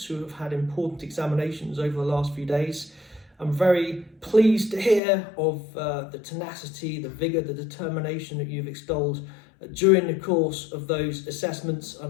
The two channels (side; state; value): right; drops out; at 5.0 s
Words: who have had important examinations over the last few days. I'm very pleased to hear of the tenacity, the vigour, the determination that you've extolled during the course of those assessments,